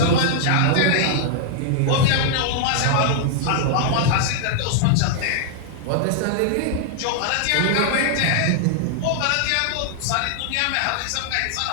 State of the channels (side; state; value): both; different; correlation -0.01